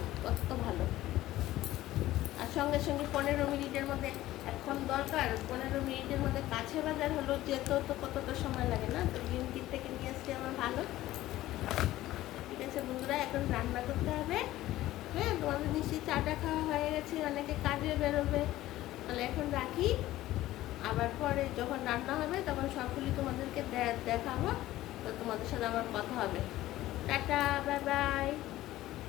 কত ভালো। আর সঙ্গে 15 মিনিটের মধ্যে, এখন দরকার 15 মিনিটের মধ্যে কাছে বাজার হলো, যেত তো কতটা সময় লাগে না। তো ব্লিঙ্কিট থেকে নিয়ে আসলে আমার ভালো। ঠিক আছে বন্ধুরা, এখন রান্না করতে হবে। হ্যাঁ, তোমাদের নিশ্চয়ই চাটা খাওয়া হয়ে গেছে, অনেকে কাজে বেরোবে। তাহলে এখন রাখি, আবার পরে যখন রান্না হবে তখন সবগুলি তোমাদেরকে দেখাবো। তো তোমাদের সাথে আবার কথা হবে। টাটা, বাই বাই,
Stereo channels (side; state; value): right; quieter; 15.5 dB